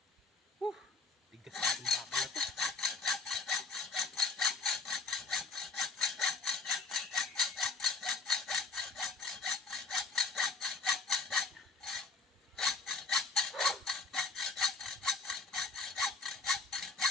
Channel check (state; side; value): quieter; right; 4.5 dB